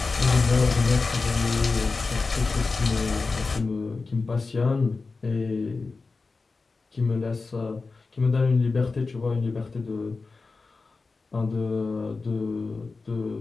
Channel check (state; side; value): quieter; right; 4.0 dB